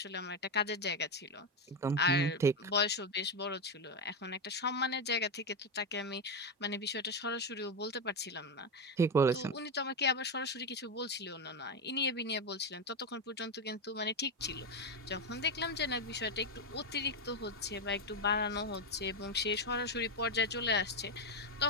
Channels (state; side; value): normal; both; correlation 0.09